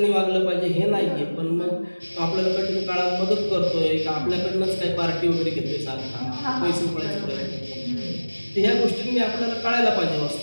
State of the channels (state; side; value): inverted; both; correlation -1.00